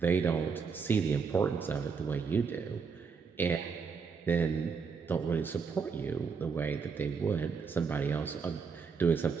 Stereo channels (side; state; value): left; quieter; 5.6 dB